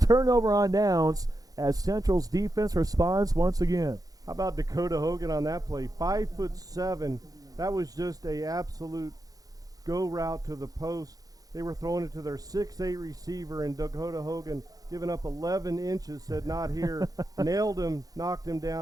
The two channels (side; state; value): left; late; 0.18 ms